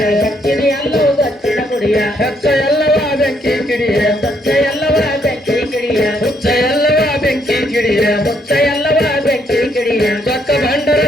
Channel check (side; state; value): both; normal; correlation 0.72